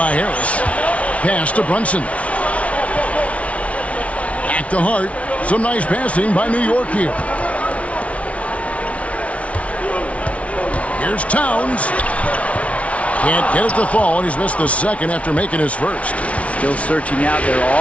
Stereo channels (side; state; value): right; late; 0.064 ms